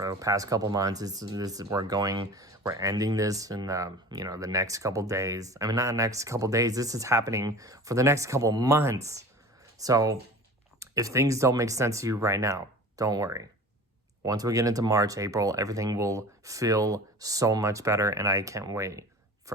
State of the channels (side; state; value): both; normal; correlation 0.38